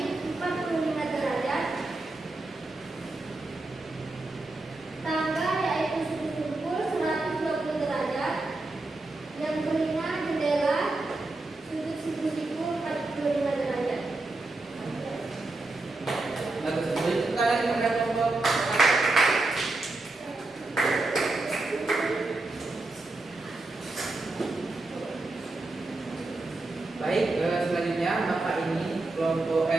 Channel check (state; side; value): quieter; left; 3.1 dB